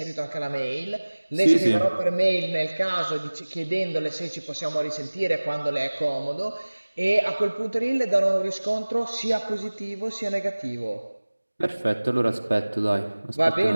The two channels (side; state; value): both; inverted; correlation -1.00